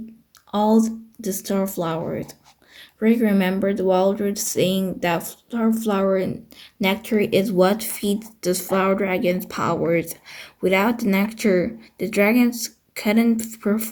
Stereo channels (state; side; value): identical; both; correlation 1.00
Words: all the starflowers." Drake remembered Waldridge saying that starflower nectar is what feeds the flower dragon's powers. Without the nectar, the dragons couldn't